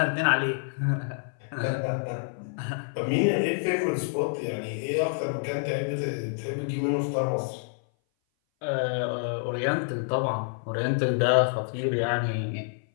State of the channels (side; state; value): right; silent; 57 dB below the other